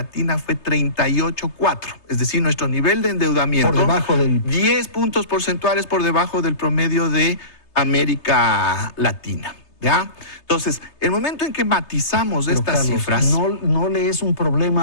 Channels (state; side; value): late; right; 3.3 ms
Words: fue 38.4%. Es decir, nuestro nivel de endeudamiento, por debajo del 10 puntos porcentuales por debajo del promedio de América Latina. ¿Ya? Entonces, el momento en que matizamos estas Carlos, cifras... No le es un